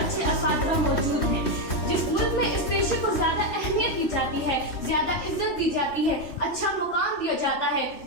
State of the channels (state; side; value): late; right; 3.1 ms